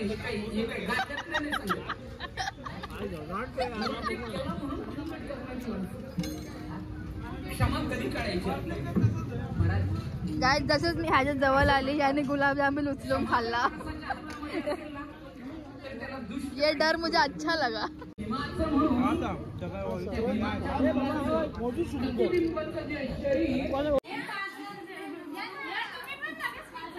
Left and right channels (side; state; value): both; identical; correlation 1.00